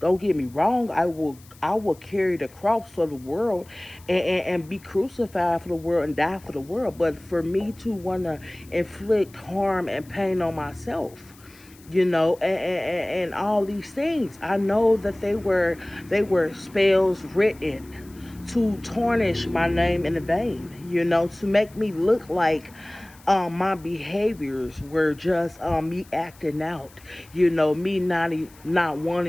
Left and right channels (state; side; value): noise; left; hiss, 25 dB below the sound